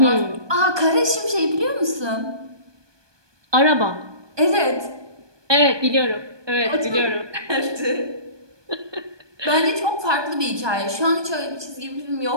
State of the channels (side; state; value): left; late; 1.2 ms